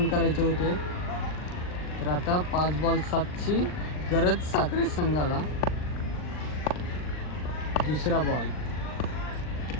करायचे होते. तर आता 5 बॉल 7ची गरज साखरे संघाला. दुसरा बॉल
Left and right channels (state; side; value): late; right; 39 ms